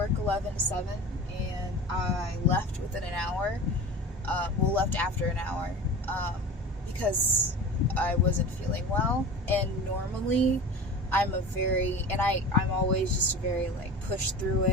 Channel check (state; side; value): normal; both; correlation 0.34